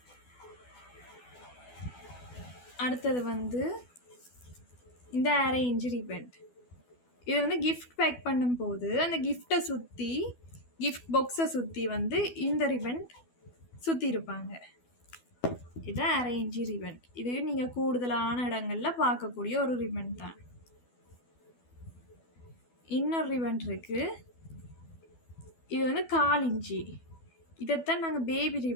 அடுத்தது வந்து இந்த 1/2 இன்ச்சு ரிபன். இது வந்து கிஃப்ட் பேக் பண்ணும்போது அந்த கிஃப்டை சுற்றி, கிஃப்ட் பாக்ஸை சுற்றி வந்து இந்த ரிபன் சுற்றி இருப்பாங்க. இது 1/2 இன்ச்சு ரிபன். இது நீங்கள் கூடுதலான இடங்களில் பார்க்கக்கூடிய ஒரு ரிபன் தான். இன்னொரு ரிபன் இருக்குது. இது வந்து 1/4 இன்ச்சு. இதைத்தான் நாங்கள் பேபி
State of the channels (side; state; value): right; late; 12 ms